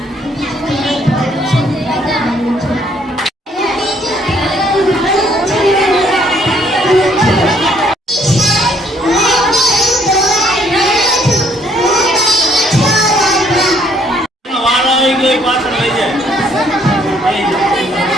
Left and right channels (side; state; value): both; normal; correlation 0.65